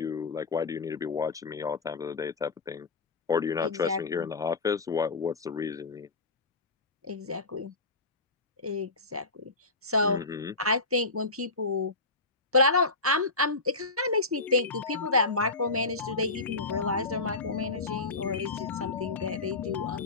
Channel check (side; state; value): right; quieter; 3.5 dB